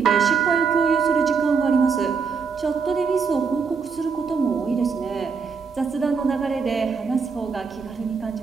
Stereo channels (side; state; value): left; quieter; 5.5 dB